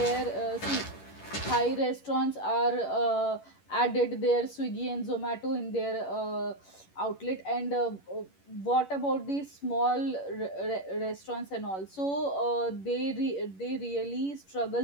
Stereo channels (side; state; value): right; late; 11 ms